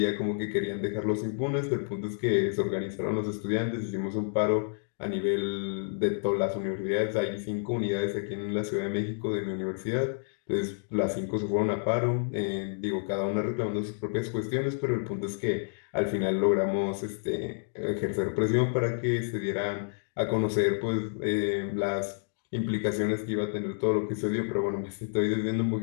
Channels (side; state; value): right; silent; digital silence